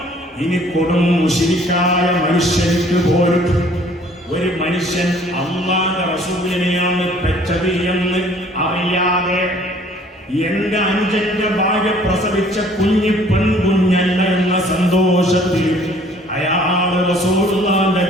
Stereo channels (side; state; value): both; normal; correlation 0.56